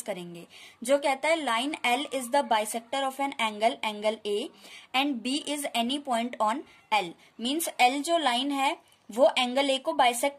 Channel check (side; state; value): both; identical; correlation 1.00